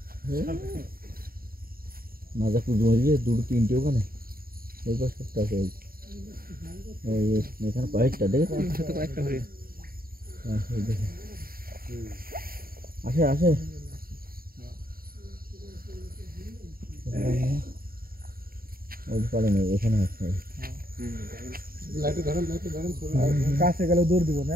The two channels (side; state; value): left; late; 0.43 ms